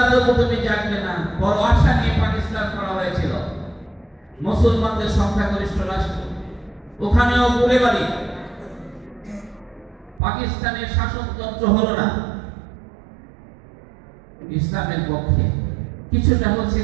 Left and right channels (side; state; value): left; drops out; at 10.2 s